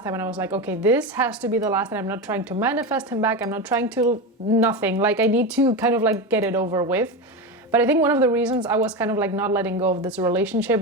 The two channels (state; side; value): normal; both; correlation 0.19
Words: time, and I was like, okay, this has to be the last time. I'm not trying to manifest him back. I'm not trying to nothing. Like, I need to kind of like get it over with. But I think one of the reasons I was kind of like not letting go of this relationship